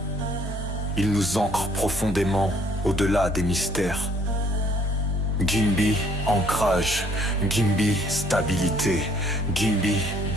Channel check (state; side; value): normal; both; correlation 0.61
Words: Ils nous ancrent profondément au-delà des mystères. Gimbi, ancrage. Gimbi, stabilité. Gimbi,